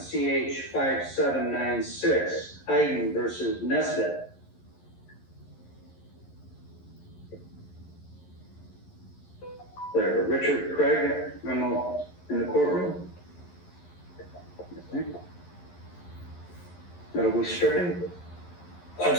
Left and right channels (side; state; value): right; late; 11 ms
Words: 5796, Hayden versus Nesbitt. There, Richard Craig, memo in the courtroom. Okay. That'll be stricken. I'm